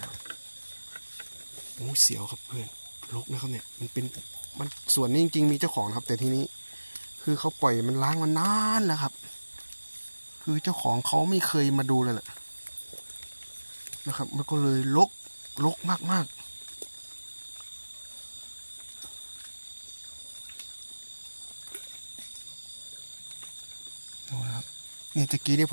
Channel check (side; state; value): both; inverted; correlation -1.00